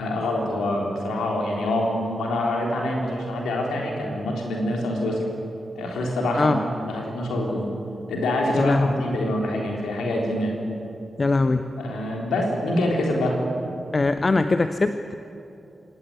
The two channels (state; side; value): normal; both; correlation 0.87